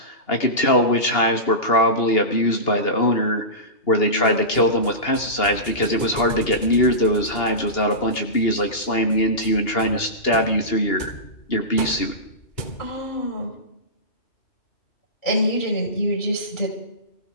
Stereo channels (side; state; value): right; late; 2.8 ms